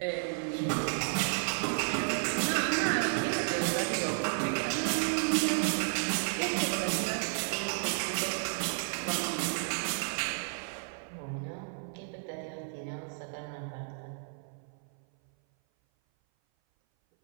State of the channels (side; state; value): left; silent; 56 dB below the other